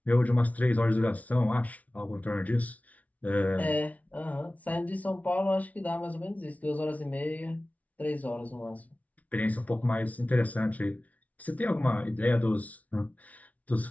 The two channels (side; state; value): right; late; 0.070 ms